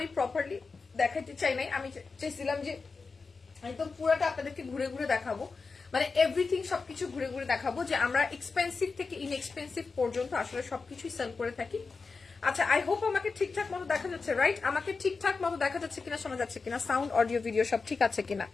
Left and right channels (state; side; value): quieter; right; 4.5 dB